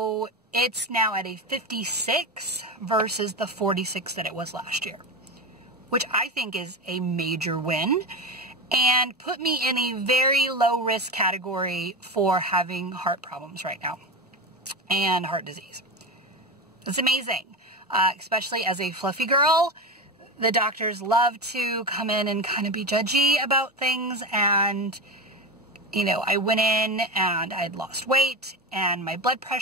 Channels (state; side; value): normal; both; correlation 0.21